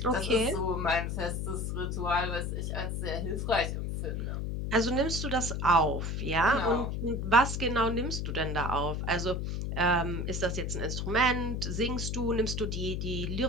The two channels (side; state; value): left; noise; hum, 2 dB below the sound